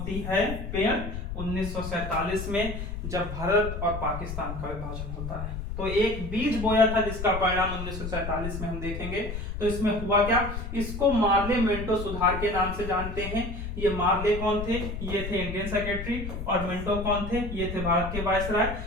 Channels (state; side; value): noise; left; rumble, 6 dB below the sound